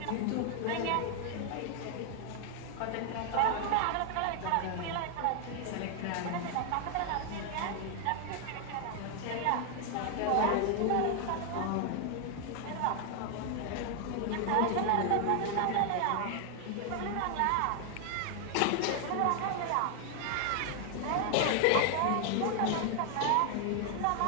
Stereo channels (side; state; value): both; different; correlation 0.00